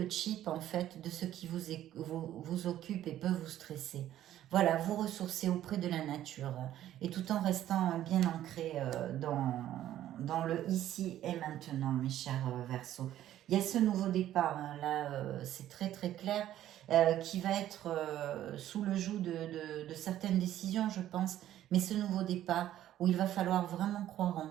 chip en fait de ce qui vous occupe et peut vous stresser. Voilà, vous ressourcer auprès de la nature et tout en restant bien ancré dans le ici et maintenant, mes chers Verseaux. Il y a ce nouveau départ, hein, là c'est très très clair, qui va être sous le joug de certaines décisions, je pense, mais ce nouveau départ où il va falloir vraiment croire en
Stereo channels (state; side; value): quieter; left; 12.5 dB